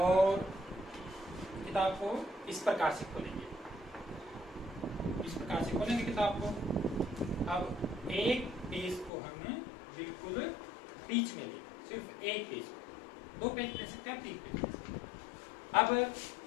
किताब को इस प्रकार से खोलेंगे, किताब को। अब एक पेज को हम बिल्कुल बीच में लेंगे, सिर्फ एक पेज, 2 पेज ले सकते हैं, 3 पेज ले सकते हैं। अब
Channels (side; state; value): right; drops out; at 9.1 s